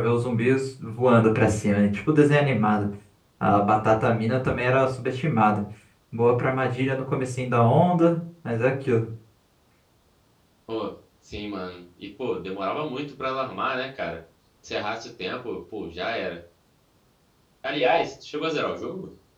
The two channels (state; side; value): identical; both; correlation 1.00